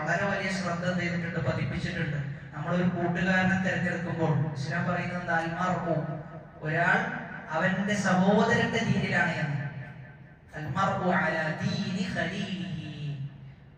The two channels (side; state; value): both; identical; correlation 1.00